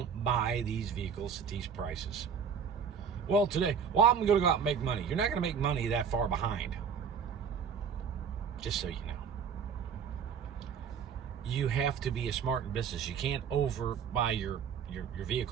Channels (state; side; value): quieter; left; 6.9 dB